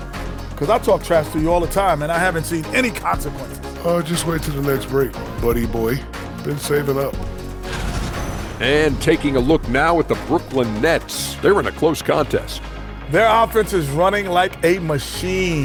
because I talk trash to you all the time, and I haven't seen any consequences. Just wait till the next break, buddy boy. Been saving up. And taking a look now at the Brooklyn Nets. They're in a close contest. Their offense is running like a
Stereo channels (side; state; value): both; identical; correlation 1.00